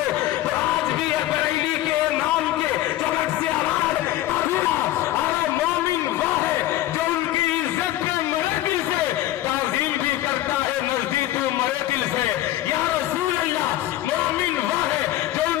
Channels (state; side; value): quieter; right; 14.8 dB